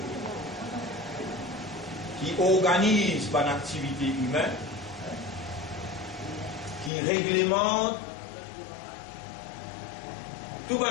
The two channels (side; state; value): right; drops out; at 6.9 s